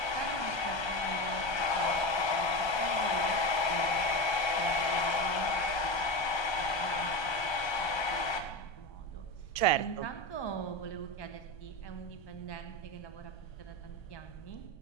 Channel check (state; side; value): late; right; 1.3 ms